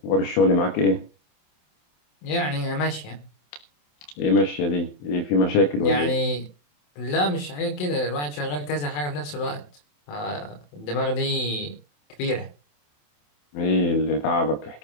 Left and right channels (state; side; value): late; right; 27 ms